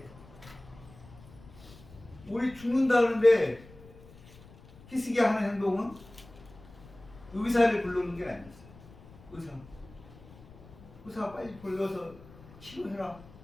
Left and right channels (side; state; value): left; noise; rumble, 21 dB below the sound